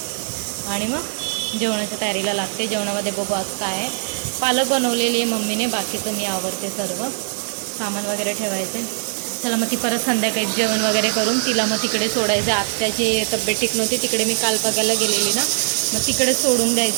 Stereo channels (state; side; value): silent; left; digital silence